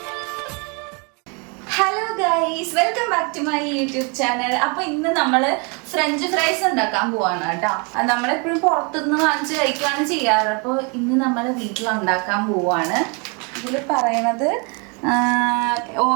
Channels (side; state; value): left; quieter; 33.3 dB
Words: Hello guys, welcome back to my YouTube channel. അപ്പൊ ഇന്ന് നമ്മള് ഫ്രഞ്ച് ഫ്രൈസ് ഉണ്ടാക്കാൻ പോവാണ് കേട്ടോ. നമ്മളെപ്പോഴും പുറത്തുനിന്ന് വാങ്ങിച്ച് കഴിക്കുകയാണ് ചെയ്യാറ്. അപ്പോൾ ഇന്ന് നമ്മൾ വീട്ടിൽ ഉണ്ടാക്കാൻ പോവാണ്. ഇതിൽ പറയണത്